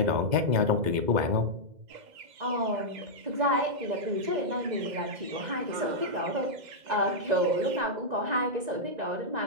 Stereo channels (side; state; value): left; late; 2.0 ms